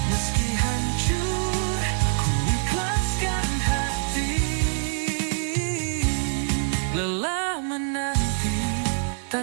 Meski hancur, ku ikhlaskan hati. Lelah menanti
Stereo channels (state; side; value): silent; left; digital silence